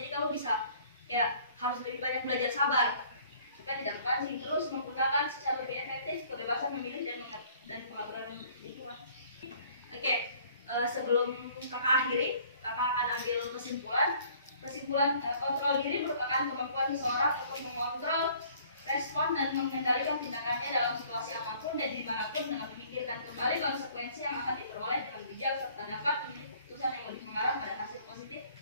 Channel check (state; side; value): inverted; both; correlation -0.56